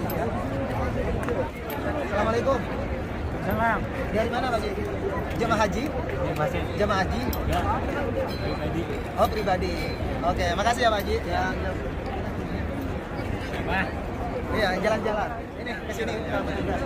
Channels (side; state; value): both; identical; correlation 1.00